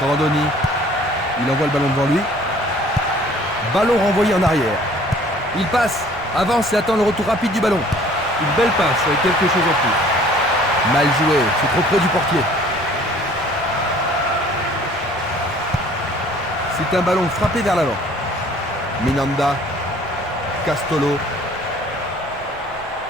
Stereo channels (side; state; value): left; noise; rumble, 21 dB below the sound